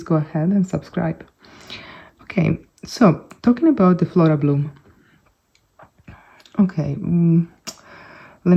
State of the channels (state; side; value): identical; both; correlation 1.00